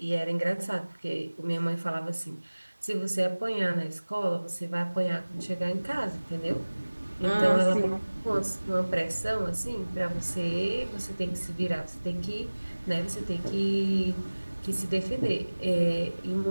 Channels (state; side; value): inverted; both; correlation -1.00